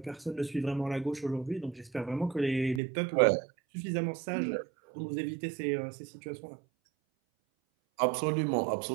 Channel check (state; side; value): drops out; left; at 2.8 s